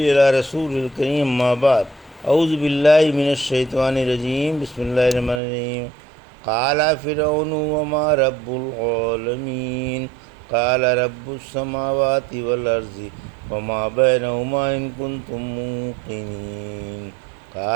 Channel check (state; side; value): drops out; left; at 5.4 s